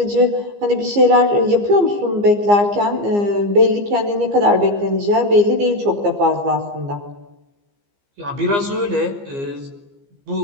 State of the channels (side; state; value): left; late; 15 ms